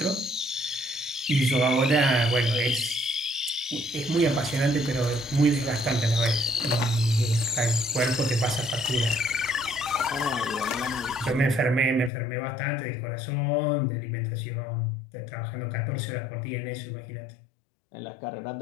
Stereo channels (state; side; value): drops out; right; at 12.1 s